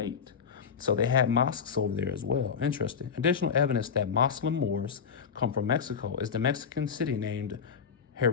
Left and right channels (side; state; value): right; quieter; 6.5 dB